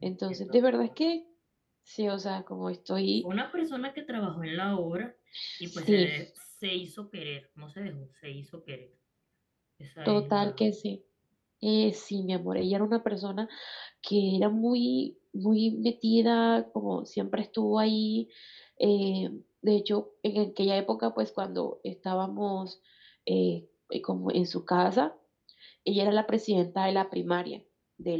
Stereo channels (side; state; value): both; identical; correlation 1.00